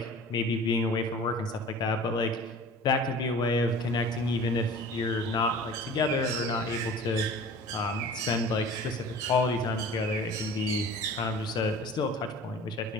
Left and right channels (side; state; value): both; normal; correlation 0.42